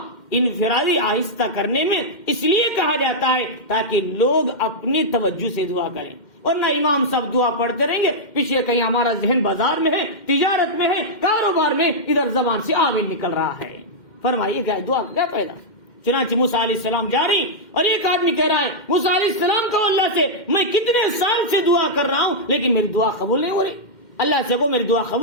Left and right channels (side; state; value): right; late; 2.1 ms